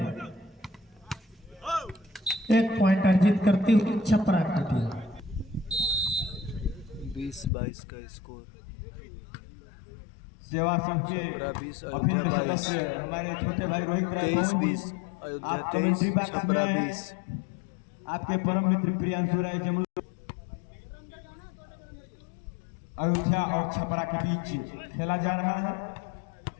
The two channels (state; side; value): drops out; right; at 7.5 s